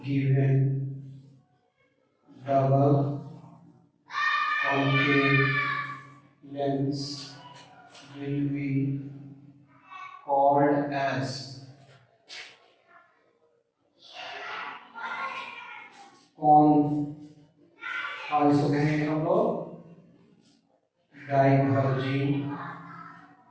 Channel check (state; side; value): identical; both; correlation 1.00